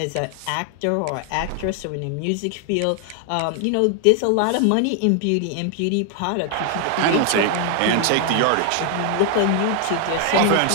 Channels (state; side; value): different; both; correlation 0.00